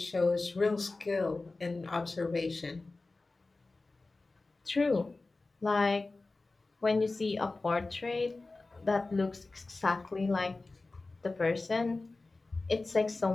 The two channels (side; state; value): right; quieter; 3.4 dB